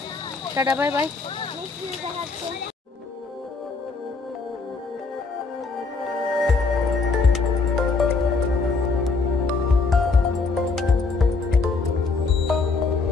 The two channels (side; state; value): right; quieter; 4.1 dB